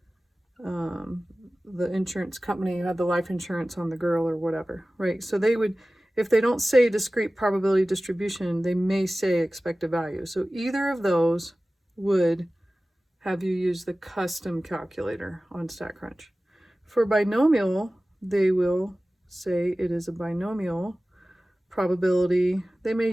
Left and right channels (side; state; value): both; normal; correlation 0.97